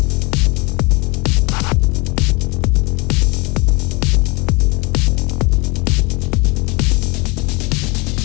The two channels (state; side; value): quieter; right; 27.1 dB